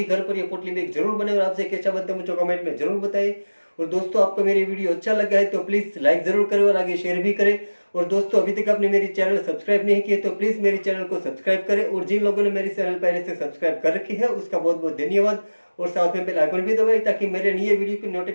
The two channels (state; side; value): inverted; both; correlation -1.00